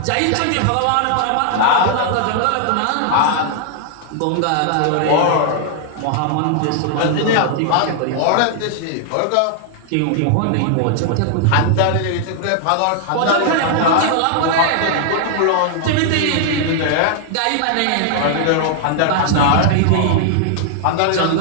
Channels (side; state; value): both; different; correlation -0.01